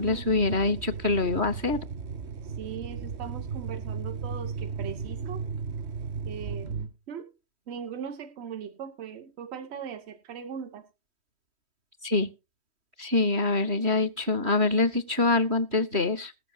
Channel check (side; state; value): left; late; 3.1 ms